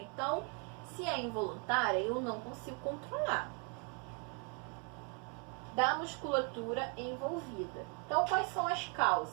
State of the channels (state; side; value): quieter; left; 36.5 dB